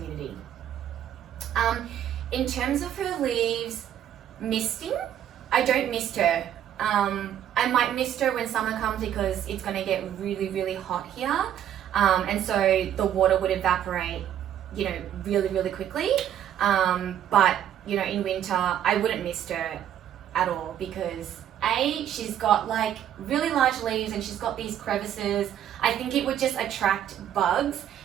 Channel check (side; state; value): left; quieter; 10.5 dB